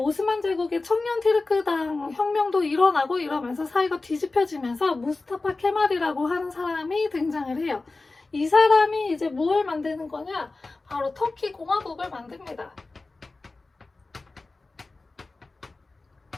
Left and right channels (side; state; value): right; quieter; 3.5 dB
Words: 제국의 청년 티르크당 혁명도 일어나고 이러면서 사이가 뒤집혀지면서 무스타파 케말이라고 하는 사람이 등장을 해요. 이 사람이 이제 무엇을 만드는 거냐? 바로 터키 공화국을 만듭니다.